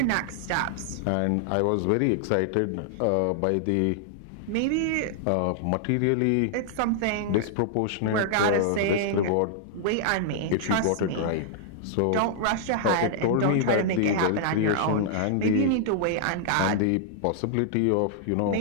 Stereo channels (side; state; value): both; different; correlation -0.01